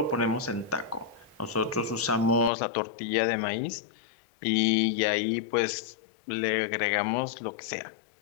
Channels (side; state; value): right; drops out; at 2.5 s